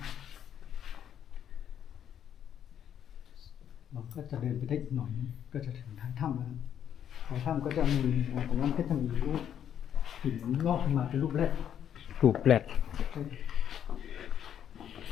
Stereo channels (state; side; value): quieter; right; 9.4 dB